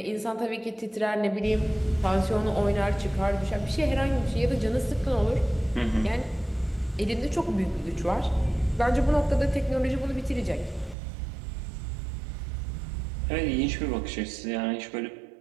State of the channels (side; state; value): left; drops out; at 11.0 s